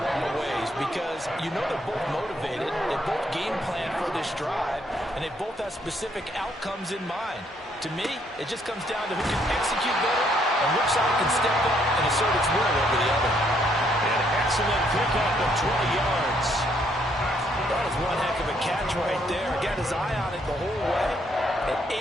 lot of ways because you know they're both motivated. They both game plan for this drive, and they both have specific outcomes in mind. To me, it just comes down to who can execute better and which side can step up and assert its will over the other. An excellent pickup of 20 yards. That was one heck of a catch right there. Got his eye on it the whole way. And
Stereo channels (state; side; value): normal; both; correlation 0.70